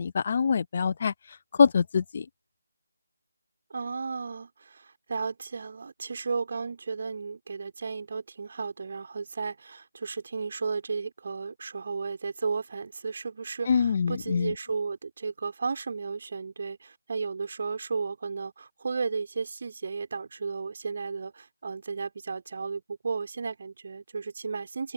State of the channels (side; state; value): both; inverted; correlation -0.85